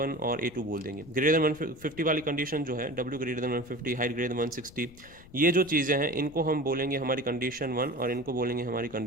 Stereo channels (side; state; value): left; noise; rumble, 21 dB below the sound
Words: और A2 बोल देंगे। ग्रेटर देन 150 वाली कंडीशन जो है, W greater than 150, height greater than 160, ये जो चीज़ें हैं इनको हम बोलेंगे हमारी कंडीशन 1 और इनको बोलेंगे हमारी